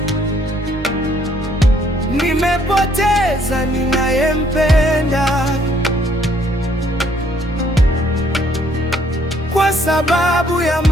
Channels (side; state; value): both; normal; correlation 0.65